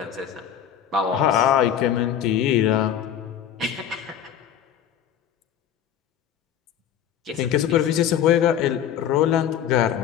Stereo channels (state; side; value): quieter; right; 9.6 dB